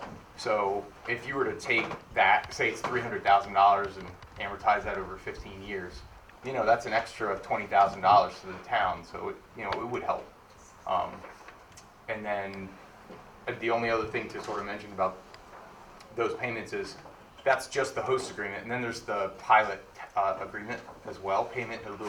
So if you were to take that, say it's $300,000 and amortize that over 15 years, that's an extra $20,000 to the town. So it would help. And then the only other thing to sort of mention about those payments is that's just the host agreement, and then there's the pilot agreement as well, payment in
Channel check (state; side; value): identical; both; correlation 1.00